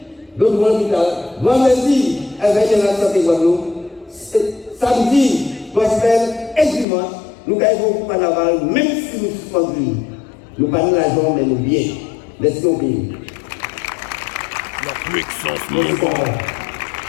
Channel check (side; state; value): right; drops out; at 6.9 s